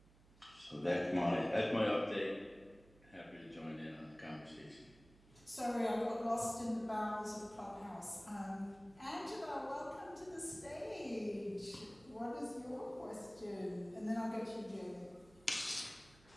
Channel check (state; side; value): noise; right; hum, 25 dB below the sound